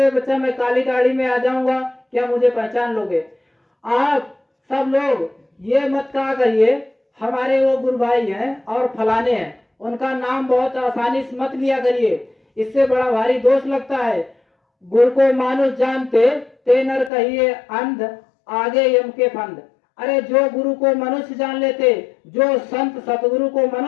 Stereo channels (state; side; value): drops out; right; at 17.1 s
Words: बच्चा मैं काली गाड़ी में आ जाऊंगा, क्या मुझे पहचान लोगे? आप सब लोग ये मत कहा करिए हमारे वो गुरु भाई हैं और फलाने हैं, उनका नाम बहुत आसानी से मत लिया करिए, इससे बड़ा भारी दोष लगता है। गुरु को मानुष जानते ते नर कहिए अंध, आगे यम के फंद। अरे जो गुरु को मनुष्य जान लेते, जो संत सतगुरु को